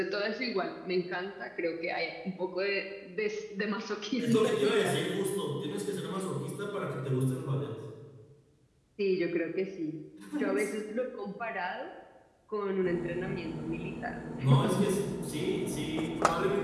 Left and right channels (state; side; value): identical; both; correlation 1.00